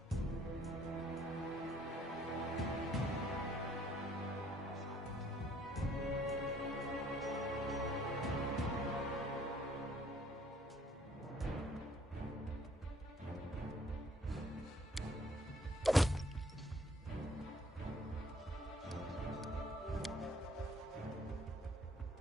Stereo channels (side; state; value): both; normal; correlation 0.61